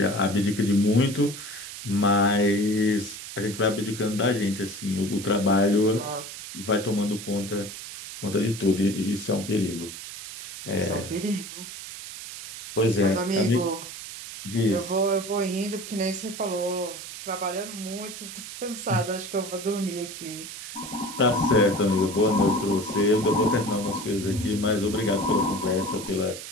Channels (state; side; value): noise; right; hiss, 11 dB below the sound